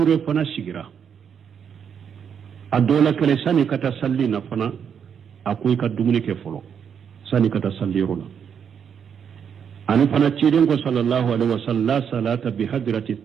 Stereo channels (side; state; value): left; quieter; 7.6 dB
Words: فنا سيغرا الدولة كله ساني كتا صلي نفنا أكوي كدومني كفلو ساني كتا صلي رولا أنا فنا كيدن صلى الله عليه وسلم لا صلاة بحضرة